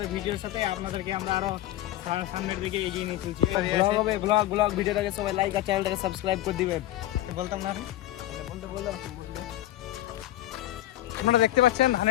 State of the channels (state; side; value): quieter; right; 14.5 dB